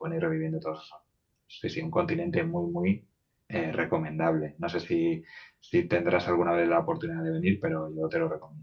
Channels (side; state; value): both; identical; correlation 1.00